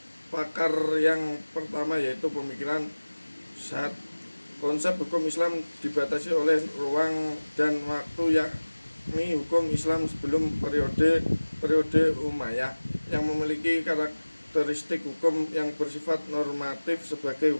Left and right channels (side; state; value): both; inverted; correlation -1.00